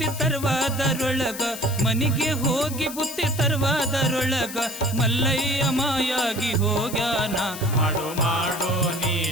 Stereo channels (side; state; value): left; noise; hiss, 11 dB below the sound